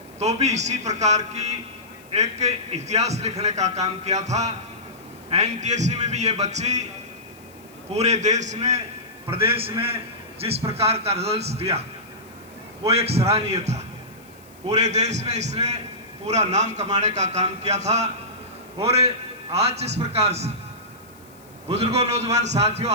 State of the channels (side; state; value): left; noise; hiss, 27 dB below the sound